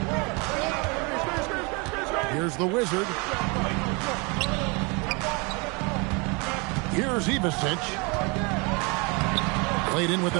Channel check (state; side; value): quieter; left; 29.6 dB